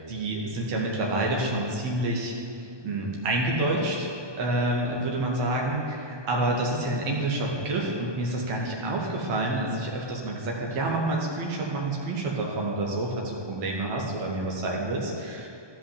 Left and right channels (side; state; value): left; late; 1.2 ms